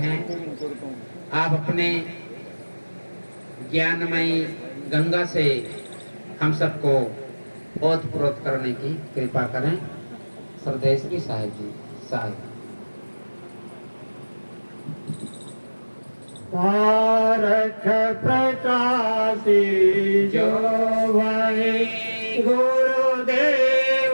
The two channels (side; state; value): both; inverted; correlation -1.00